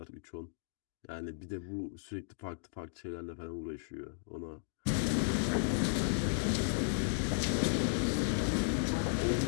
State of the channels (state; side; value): silent; right; digital silence